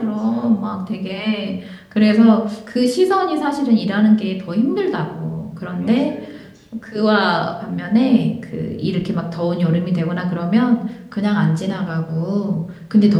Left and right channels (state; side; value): identical; both; correlation 1.00